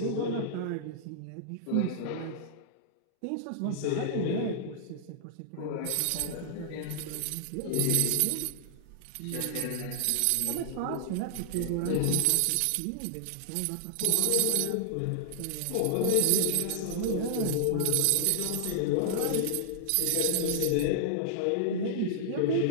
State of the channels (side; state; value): both; different; correlation -0.01